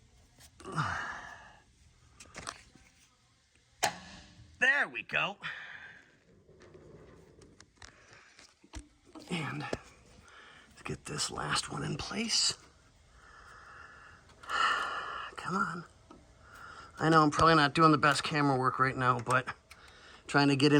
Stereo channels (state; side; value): identical; both; correlation 1.00